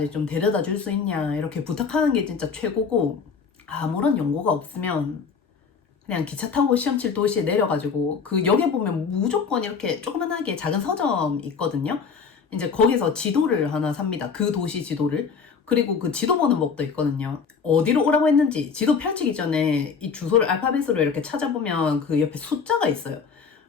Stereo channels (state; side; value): quieter; right; 5.7 dB